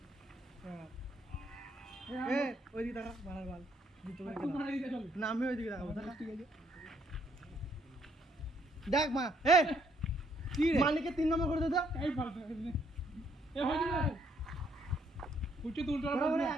হ্যাঁ এই এ ওইদিকে দেখা মারার বাল জিততে পারে তুই মারা দিতে চল না আমি ওইদিকে দেখাবো দেখা ঠিক আছে দেখ মা এ কি রে মালিককে 3 নম্বর করে দে দাও এই ফালতু এই হয়ে যাবে উঠে তুলতে ওরা পারবো ওরা না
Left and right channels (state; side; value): normal; both; correlation 0.69